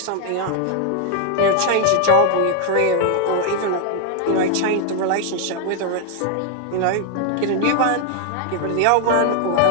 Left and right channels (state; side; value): different; both; correlation 0.00